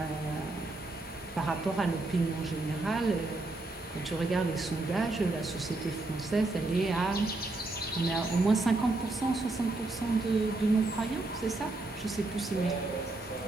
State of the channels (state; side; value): quieter; left; 3.0 dB